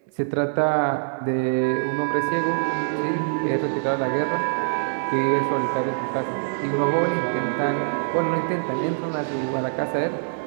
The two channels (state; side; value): silent; left; digital silence